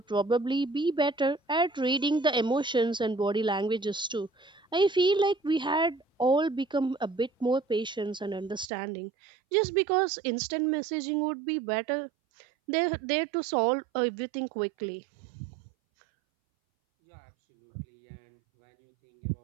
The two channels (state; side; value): drops out; left; at 8.7 s